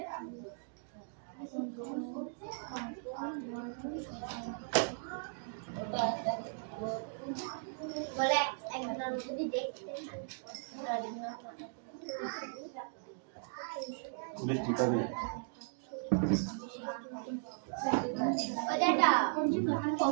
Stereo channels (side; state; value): left; silent; digital silence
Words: বলে একজন যদি দেখতে বৃষ্টি কবে? ওটা